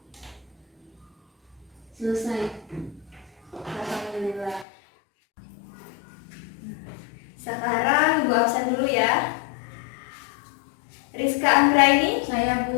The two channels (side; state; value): right; drops out; at 4.7 s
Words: Selesai. Alhamdulillah. Sekarang ibu absen dulu ya. Rizka Anggraini, Saya